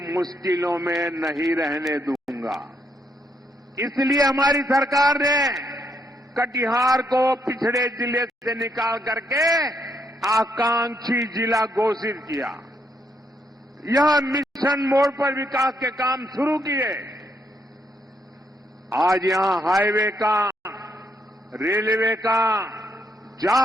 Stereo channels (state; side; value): normal; both; correlation 0.76